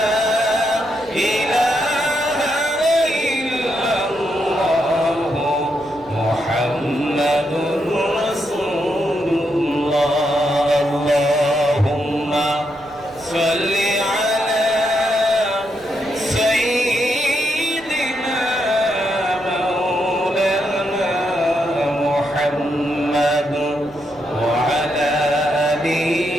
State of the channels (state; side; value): noise; right; rumble, 26 dB below the sound